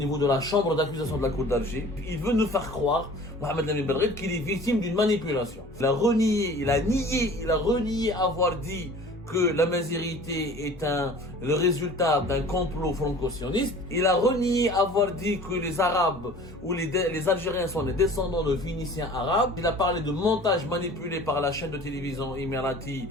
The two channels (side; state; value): both; normal; correlation 0.45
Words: de la chambre d'accusation de la Cour d'Alger. Il veut nous faire croire, Mohamed Amin Belghait, qu'il est victime d'une manipulation. Il a renié avoir dit que la mazirité est le résultat d'un complot franco-sioniste. Il a renié avoir dit que les Arabes ou les Algériens sont les descendants de Phéniciens arabes. Il a parlé de montage manipulé par la chaîne de télévision émirati